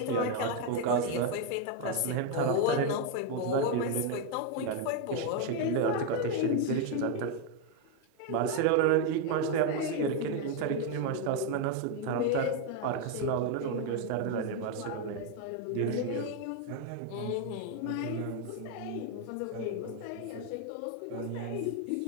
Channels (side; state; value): both; different; correlation 0.01